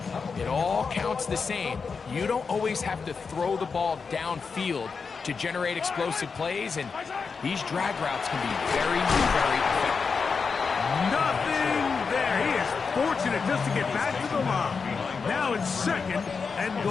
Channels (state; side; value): quieter; right; 5.2 dB